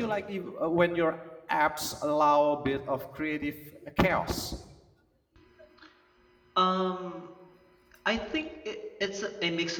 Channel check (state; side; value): identical; both; correlation 1.00